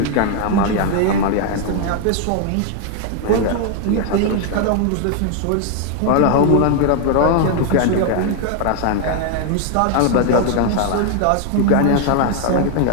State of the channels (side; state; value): both; different; correlation 0.00